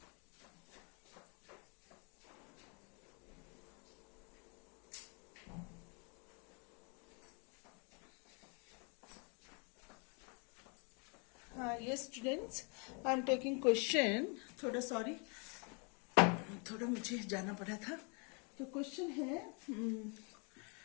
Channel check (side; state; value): right; quieter; 35.2 dB